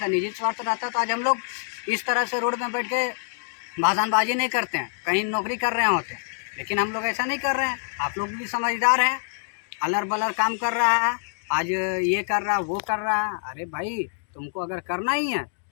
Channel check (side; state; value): right; silent; digital silence